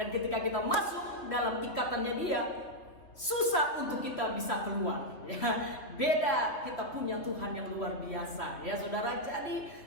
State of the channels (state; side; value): late; right; 3.2 ms